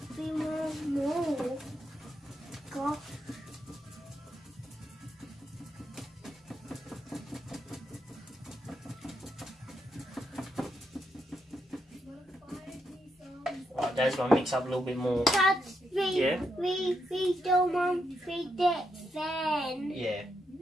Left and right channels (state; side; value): normal; both; correlation 0.80